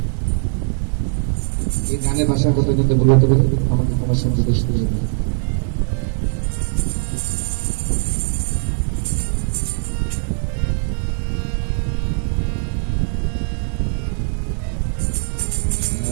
এই গানের ভাষার কথা কিন্তু বলতে পারে আমাকে তোমার সঙ্গে দেশ করে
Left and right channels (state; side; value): silent; left; 56 dB below the other